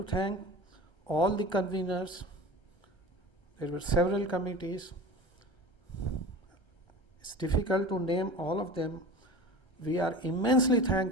thank all the conveners. There were several committees. It's difficult to name all of them. We are immensely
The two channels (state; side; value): late; right; 1.3 ms